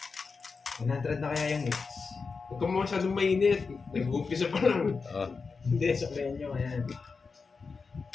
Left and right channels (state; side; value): quieter; right; 4.8 dB